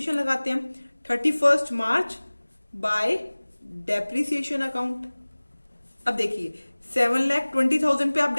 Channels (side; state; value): both; inverted; correlation -1.00